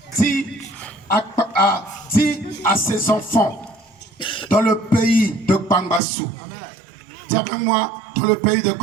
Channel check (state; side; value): drops out; left; at 6.0 s